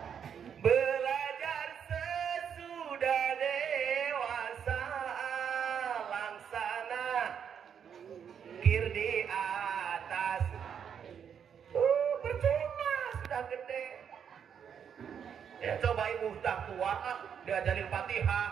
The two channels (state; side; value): quieter; left; 7.8 dB